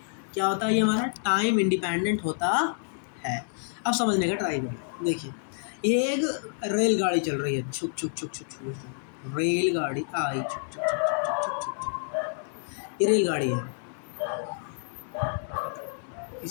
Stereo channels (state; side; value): silent; right; digital silence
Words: क्या होता है ये हमारा? टाइम इंडिपेंडेंट होता है। अब समझने का ट्राई करें। देखिए ये एक रेलगाड़ी चल रही है, छुक छुक छुक छुक छुक छुक। रेलगाड़ी आई, छुक छुक छुक छुक छुक छुक छुक। ये रेलगाड़ी है,